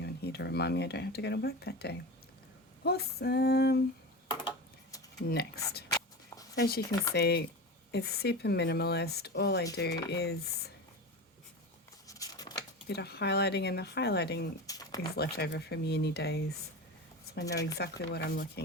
on here to remind me I don't have to go to work that day. Awesome. Next. As you can see, it's super minimalist. All I do is a bit of highlighting, and the highlighting is left over from uni days, so I know exactly what I'm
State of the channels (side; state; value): both; normal; correlation 0.27